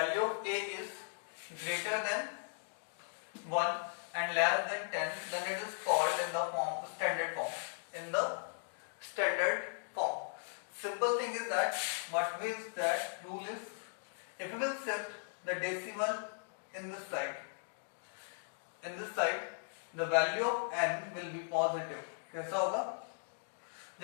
of a is greater than 1 and less than 10, then it is called in the form standard form. In the standard form, simple thing is that what means that rule is, if we will shift the decimal in this side, the value of n will be positive. कैसा होगा?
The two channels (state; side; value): silent; right; digital silence